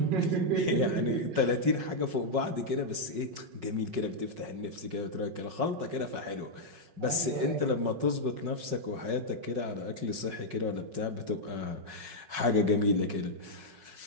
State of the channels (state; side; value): late; left; 5.4 ms